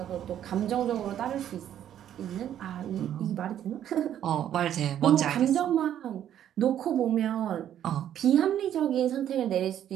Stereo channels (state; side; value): quieter; left; 10.6 dB